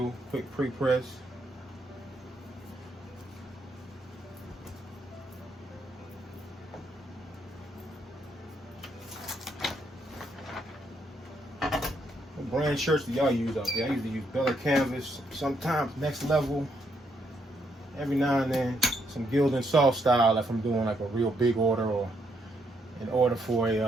quick pre-press. Brand shirts that y'all use out there. I usually use Bella canvas, sometimes Next Level, every now and then. some gilded soft style if I'm doing like a real big order, or an order for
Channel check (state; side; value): normal; both; correlation 0.75